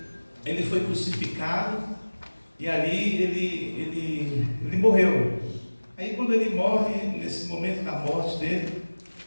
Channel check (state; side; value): inverted; both; correlation -1.00